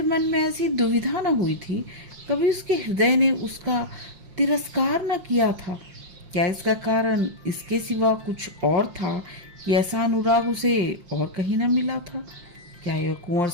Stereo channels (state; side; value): late; left; 5.7 ms